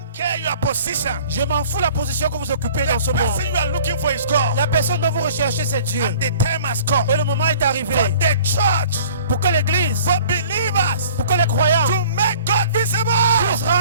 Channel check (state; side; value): inverted; both; correlation -0.49